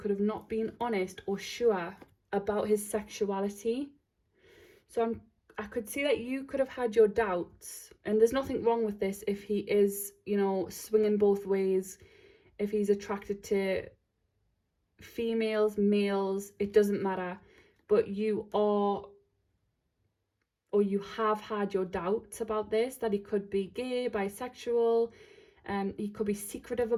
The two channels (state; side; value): identical; both; correlation 1.00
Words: have not been honest or sure about his sexuality. So I could see that you could have had your doubts, and there's nothing wrong with this if he is, you know, swinging both ways, if he's attracted to females, males, it doesn't matter. But you are, or you have had your doubts about this, that he could be gay, bisexual, he could be secretive